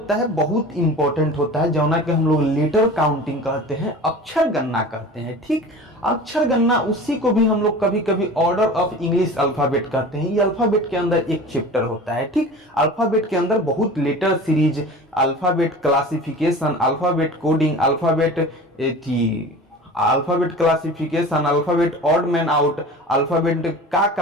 है, बहुत इंपॉर्टेंट होता है, जौना के हम लोग लेटर काउंटिंग कहते हैं, अक्षर गणना कहते हैं। ठीक, अक्षर गणना उसी को भी हम लोग कभी कभी ऑर्डर ऑफ इंग्लिश अल्फाबेट कहते हैं। ये अल्फाबेट के अंदर एक चैप्टर होता है। ठीक, अल्फाबेट के अंदर बहुत letter series, alphabet classification, alphabet coding, alphabet alphabet classification, alphabet odd man out, alphabet का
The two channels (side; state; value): both; normal; correlation 0.37